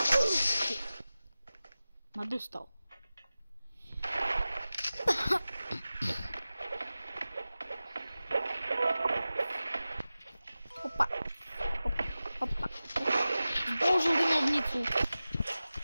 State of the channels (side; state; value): both; inverted; correlation -0.96